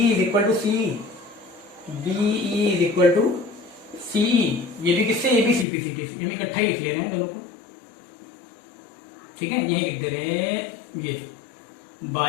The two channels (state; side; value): drops out; right; at 5.7 s